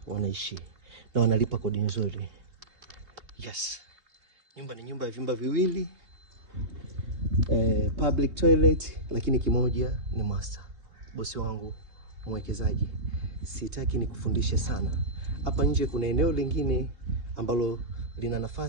wanaishi na wanalipa kodi nzuri. Yes. Nyumba ni nyumba ya vyumba viwili, public toilet, lakini kimoja ni master. Bosi wangu mwekezaji, sitaki nikufundishe sana. Hapa nje kuna eneo lingine ambalo lina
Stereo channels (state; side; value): late; left; 3.2 ms